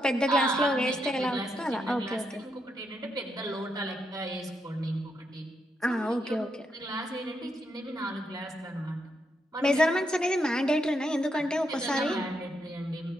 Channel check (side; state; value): both; normal; correlation 0.80